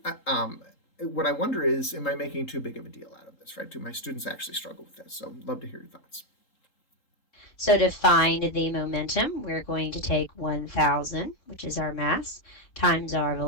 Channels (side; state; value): right; late; 3.8 ms